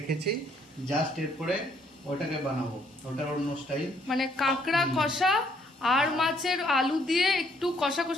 জাস্ট এরপরে ওটাকে বানাবো, ওটার অন্য স্টাইল। মানে কাঁকড়া কষা আর মাছের আলু দিয়ে একটু কষা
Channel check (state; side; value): normal; both; correlation 0.67